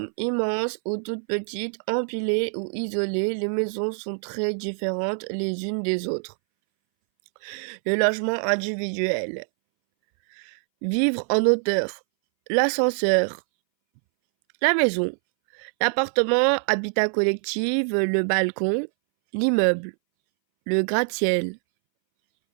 immenses ou toutes petites, empilées ou isolées, les maisons sont très différentes les unes des autres. Le logement individuel. Vivre en hauteur. L'ascenseur. La maison. L'appartement, habitat collectif, le balcon. L'immeuble. Le gratte-ciel.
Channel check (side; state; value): left; silent; 61 dB below the other